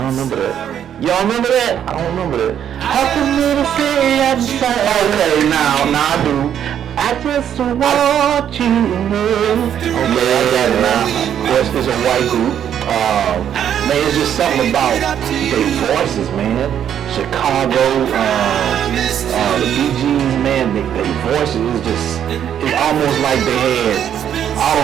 remember that. Y'all remember that? I don't remember that. How can you say I'm sorry? Okay, now I do. I just want you to know. Okay, I got it now. Yes, it's a white group. Man, it's just something about their voices, man. Chicago, the Bee Gees, man, their voices is just, it's almost like they had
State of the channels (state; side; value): quieter; left; 9.5 dB